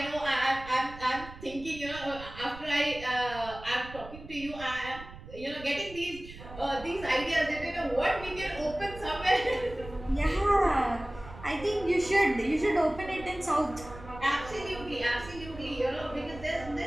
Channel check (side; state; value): right; noise; rumble, 15 dB below the sound